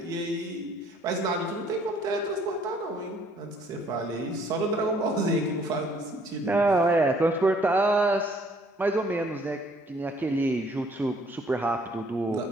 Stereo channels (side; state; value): both; normal; correlation 0.62